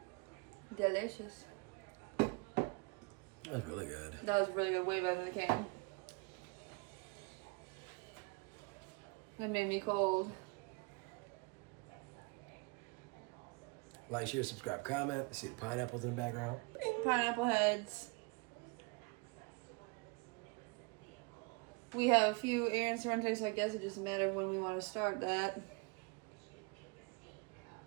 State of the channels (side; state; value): left; quieter; 29.5 dB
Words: Delicious. That's really good. That was really good. Way better than the can. That made me cold. Like, share, subscribe, comment. You see the pineapples in the background? Pineapple heads. We have a few errands to run today, so I guess it just matters when we want to start that.